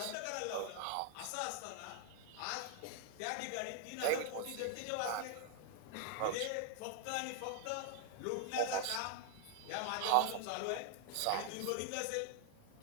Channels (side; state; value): both; different; correlation 0.00